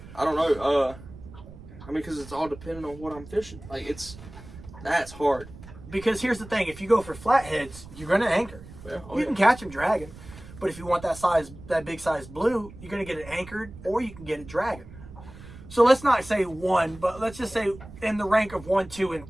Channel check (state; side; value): noise; right; rumble, 17 dB below the sound